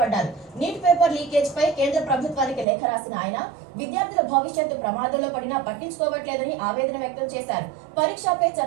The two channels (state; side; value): drops out; left; at 2.7 s